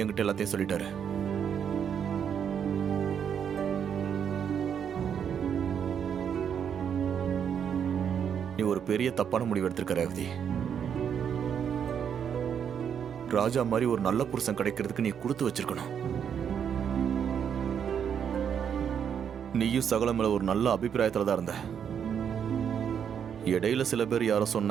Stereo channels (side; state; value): left; quieter; 8.0 dB